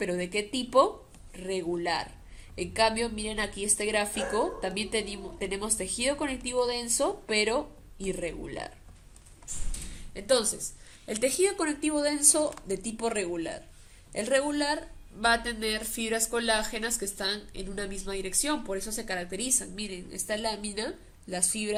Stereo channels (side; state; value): both; identical; correlation 1.00